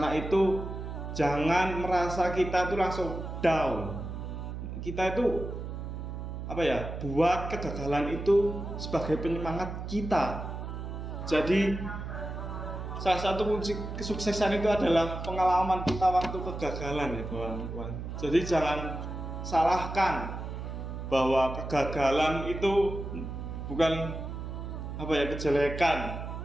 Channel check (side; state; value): right; noise; hum, 7 dB below the sound